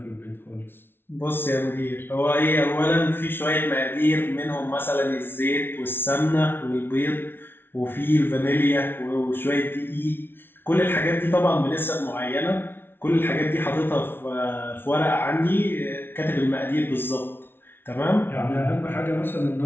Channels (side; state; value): right; late; 0.11 ms